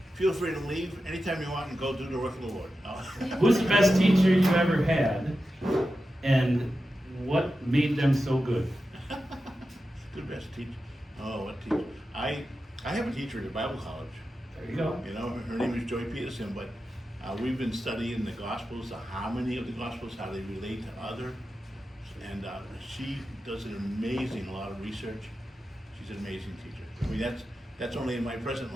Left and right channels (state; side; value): normal; both; correlation 0.91